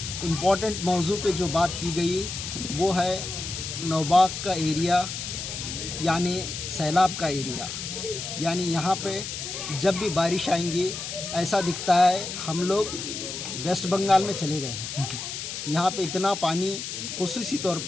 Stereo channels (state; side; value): noise; left; hiss, 6 dB below the sound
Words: इम्पोर्टेंट मौजू पे जो बात की गई वो है नौबाग का एरिया यानी सैलाब का एरिया। यानी यहाँ पे जब भी बारिश आएंगी ऐसा दिखता है हम लोग वेस्ट बंगाल में चले गए हैं। यहाँ पे इतना पानी, खुसूसी तौर